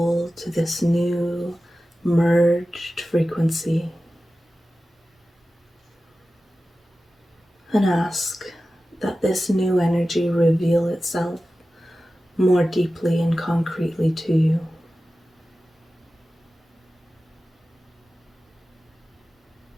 to this new merged frequency and ask that this new energy reveal itself more deeply and concretely to you.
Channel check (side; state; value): both; normal; correlation 0.95